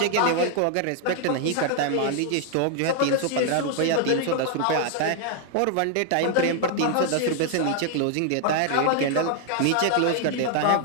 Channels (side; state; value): both; different; correlation 0.00